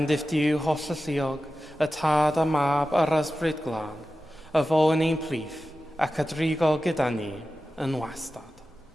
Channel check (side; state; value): both; normal; correlation 0.93